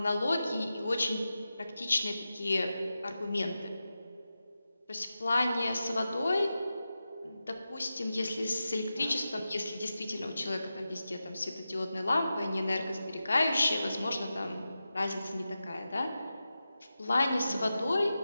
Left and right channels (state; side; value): inverted; both; correlation -0.92